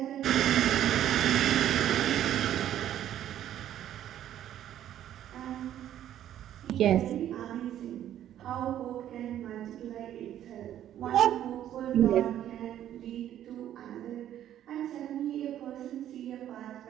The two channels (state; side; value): quieter; left; 11.4 dB